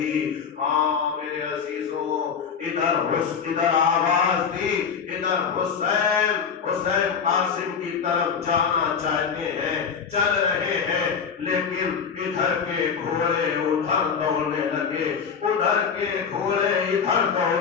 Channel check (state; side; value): quieter; right; 6.5 dB